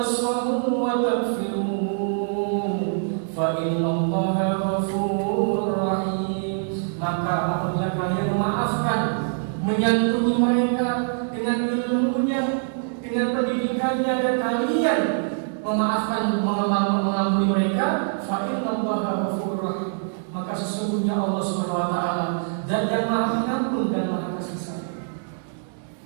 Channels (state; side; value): silent; left; digital silence